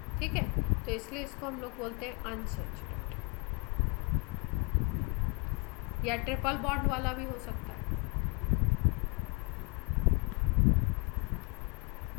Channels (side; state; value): right; quieter; 31.1 dB